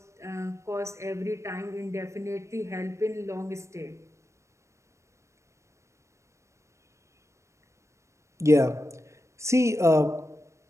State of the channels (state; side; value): late; left; 0.14 ms